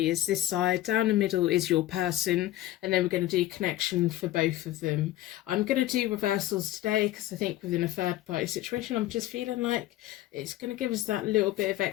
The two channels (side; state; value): right; quieter; 14.9 dB